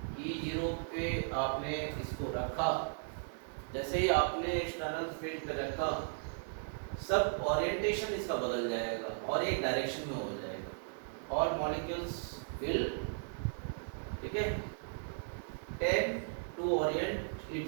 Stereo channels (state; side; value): silent; left; digital silence